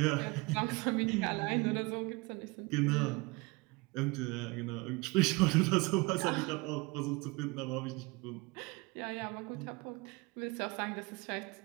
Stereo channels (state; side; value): quieter; left; 25.3 dB